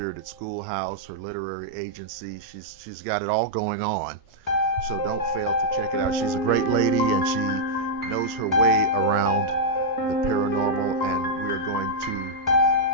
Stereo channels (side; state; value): both; normal; correlation -0.07